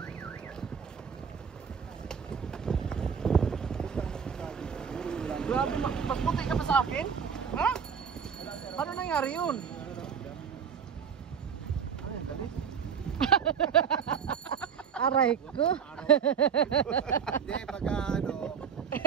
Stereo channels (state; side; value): quieter; left; 7.1 dB